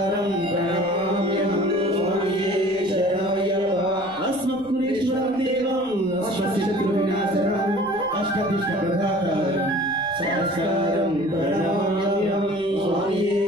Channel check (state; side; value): noise; left; rumble, 26 dB below the sound